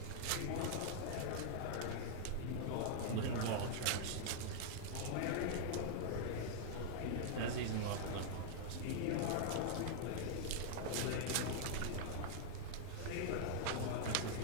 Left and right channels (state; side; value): different; both; correlation -0.01